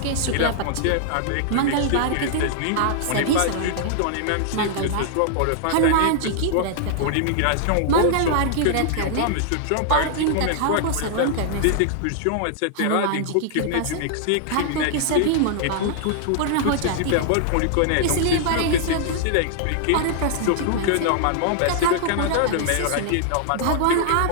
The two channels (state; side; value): different; both; correlation -0.01